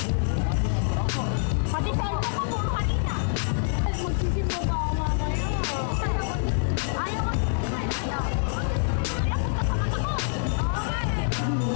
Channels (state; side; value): silent; right; 61 dB below the other